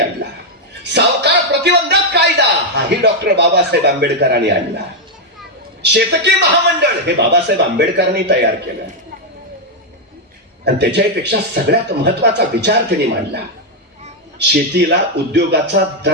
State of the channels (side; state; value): both; normal; correlation 0.00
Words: सावकार प्रतिबंधक कायदा हाही डॉक्टर बाबासाहेब आंबेडकरांनी आणला. शेतकी महामंडळ हे बाबासाहेब आंबेडकरांनी तयार केलं. आणि त्याच्यापेक्षा सगळ्यात महत्वाचा विचार त्यांनी मांडला, शेतीला उद्योगाचा